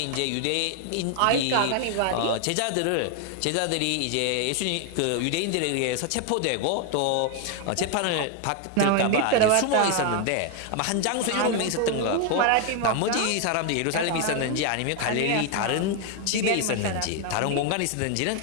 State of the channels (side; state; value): both; different; correlation 0.01